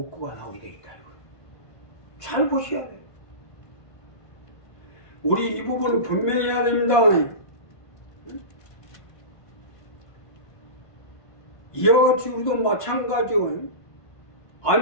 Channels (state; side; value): late; right; 1.5 ms